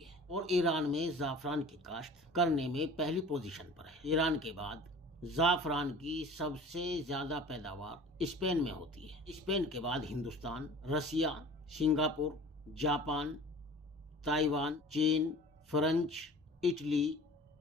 اور ایران میں زعفران کی کاشت کرنے میں پہلی پوزیشن پر ہے۔ ایران کے بعد زعفران کی سب سے زیادہ پیداوار اسپین میں ہوتی ہے۔ اسپین کے بعد Hindustan, Russia, Singapore, Japan, Taiwan, چین، فرانس، اٹلی،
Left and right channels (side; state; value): both; normal; correlation 0.43